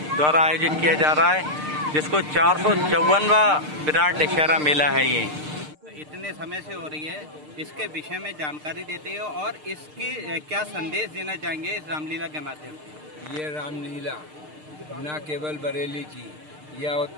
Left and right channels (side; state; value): left; late; 6.6 ms